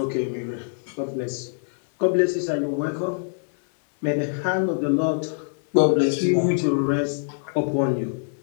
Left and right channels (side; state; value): right; silent; digital silence